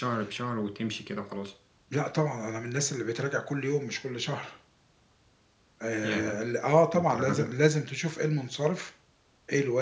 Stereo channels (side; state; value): both; identical; correlation 1.00